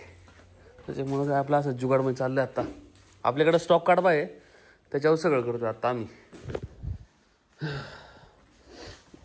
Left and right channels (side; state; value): both; identical; correlation 1.00